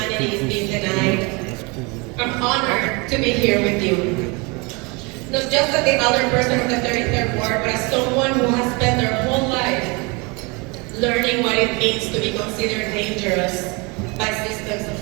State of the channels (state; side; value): quieter; left; 28.5 dB